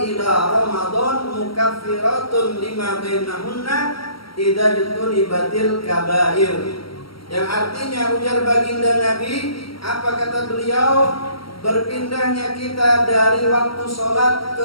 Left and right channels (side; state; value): right; late; 0.74 ms